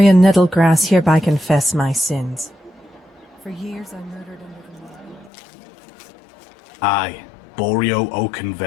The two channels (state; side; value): drops out; right; at 5.3 s